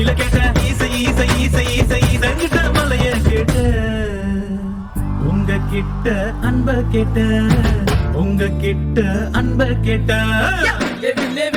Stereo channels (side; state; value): both; identical; correlation 1.00